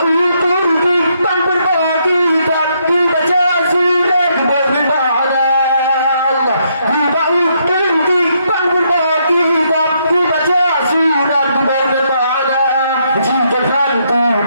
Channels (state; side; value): inverted; both; correlation -0.75